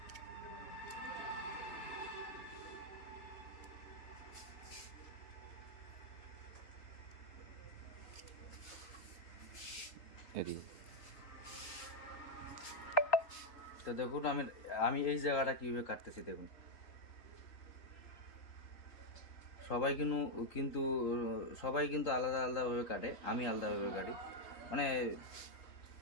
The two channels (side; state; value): right; late; 3.8 ms